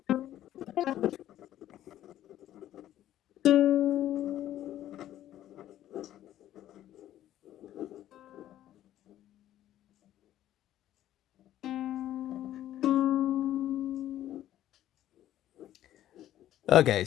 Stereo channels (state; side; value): quieter; right; 12.6 dB